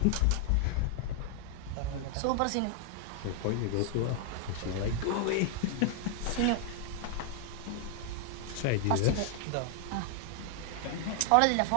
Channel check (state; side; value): different; both; correlation 0.00